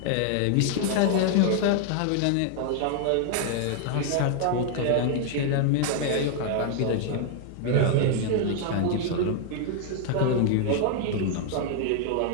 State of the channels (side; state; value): both; different; correlation 0.00